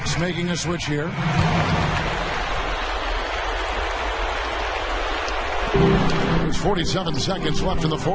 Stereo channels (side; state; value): both; identical; correlation 1.00